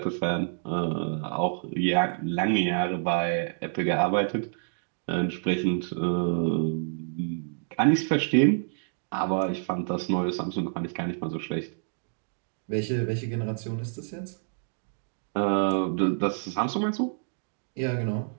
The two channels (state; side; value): silent; left; digital silence